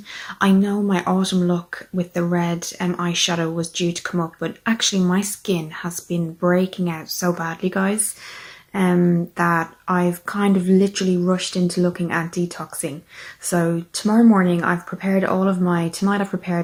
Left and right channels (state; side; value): identical; both; correlation 1.00